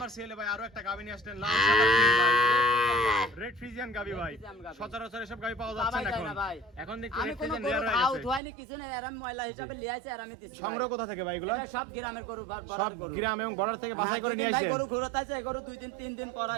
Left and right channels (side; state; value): left; drops out; at 8.4 s